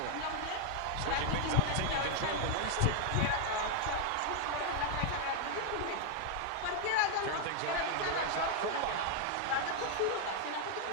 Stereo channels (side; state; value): both; different; correlation 0.00